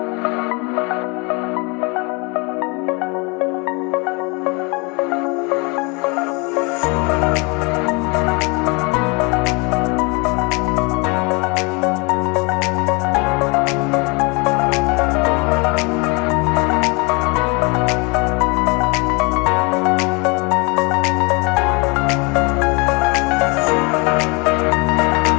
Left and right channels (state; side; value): quieter; right; 29.9 dB